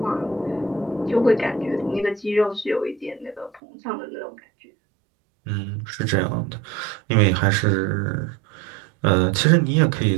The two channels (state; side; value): drops out; left; at 3.6 s